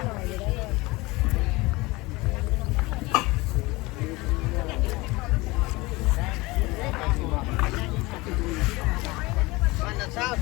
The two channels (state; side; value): quieter; right; 22.4 dB